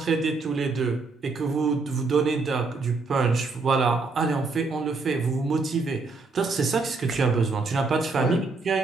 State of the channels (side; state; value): left; quieter; 3.9 dB